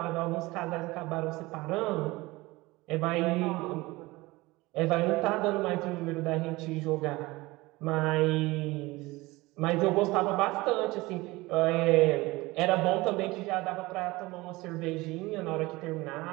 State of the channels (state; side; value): quieter; left; 21.1 dB